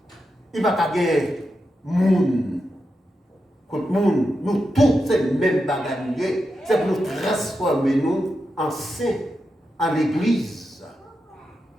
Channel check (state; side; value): normal; both; correlation 0.88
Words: Il va pas gagner moun. Contre moun, nous tous, c'est le même bagage. C'est pour nous transformer nous en saints, en l'église.